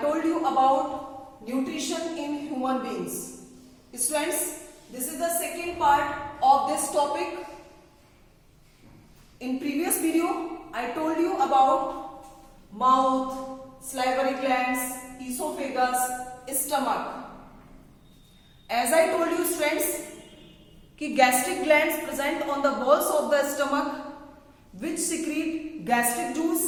you about nutrition in human beings. Students, this is the second part of this topic. In previous video, I told you about mouth, salivary glands, esophagus, stomach. As I told you students, कि gastric glands present on the walls of the stomach which secrete gastric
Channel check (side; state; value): both; identical; correlation 1.00